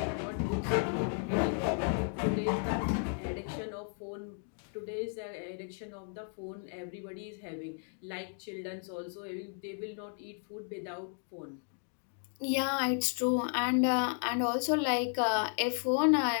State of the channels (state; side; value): silent; right; 55 dB below the other